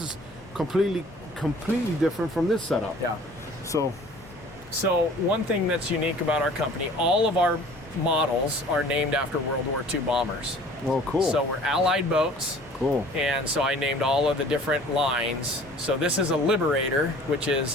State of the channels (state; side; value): normal; both; correlation 0.49